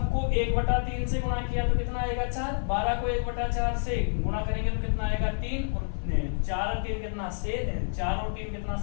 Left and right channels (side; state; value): right; silent; 58 dB below the other